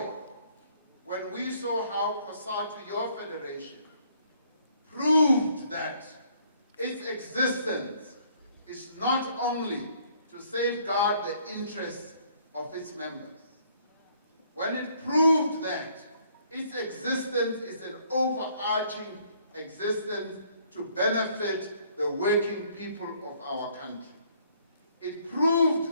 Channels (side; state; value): both; inverted; correlation -0.64